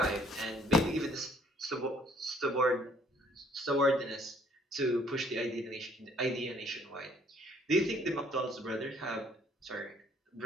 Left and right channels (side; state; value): both; normal; correlation 0.61